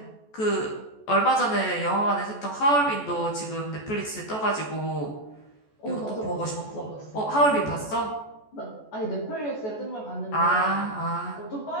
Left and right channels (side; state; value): right; late; 14 ms